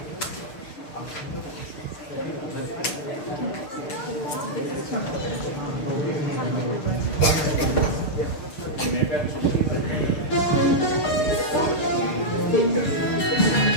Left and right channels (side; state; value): right; late; 6.6 ms